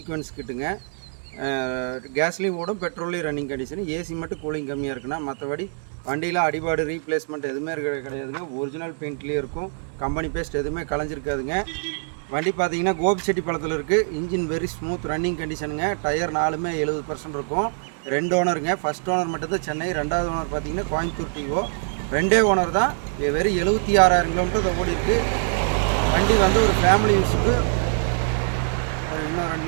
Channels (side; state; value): left; silent; digital silence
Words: கிட்டுங்க. கேஸ்லேயும் ஓடும், பெட்ரோல்லையும் ரன்னிங் கண்டிஷன். ஏசி மட்டும் கூலிங் கம்மியாக இருக்குண்ணா. மற்றபடி வண்டியில் அடிபாடு ரீப்ளேஸ்மெண்ட் எதுவுமே கிடையாதுங்க. ஒரிஜினல் பெயிண்ட்லேயே இருக்கும். கம்பெனி பேஸ்ட் எதுவுமே கலைஞ்சிருக்காதுங்க. வண்டி பார்த்தீங்கன்னா கோபிச்செட்டிப்பாளையத்தில் இருக்குது. இன்ஜின் வெரி ஸ்மூத் ரன்னிங் கண்டிஷனுங்க. டயர் 4மே 70% இருக்கும். 2 ஓனருங்க. ஃபஸ்ட் ஓனர் மட்டும்தான் சென்னை, 2வது ஓனர் பார்த்தீங்கன்னா கோயம்புத்தூர் டிஓ. 2 ஓனர் தான். வெறும் 76,000 கிலோமீட்டர் ஓடி இருக்குது. வண்டி வந்து ஒரு ஃபேமிலி யூஸுக்கு ஒரு இன்னும் 2